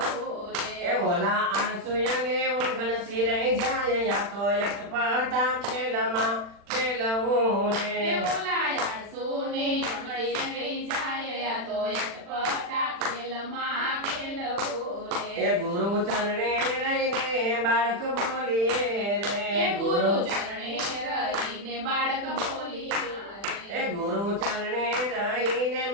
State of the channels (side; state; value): left; late; 40 ms